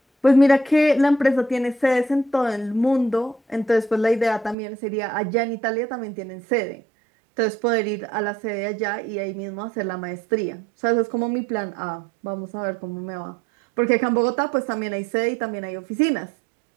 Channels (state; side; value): drops out; left; at 4.5 s